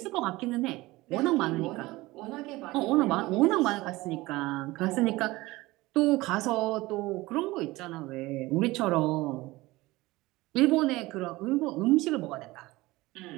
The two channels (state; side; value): quieter; left; 20.0 dB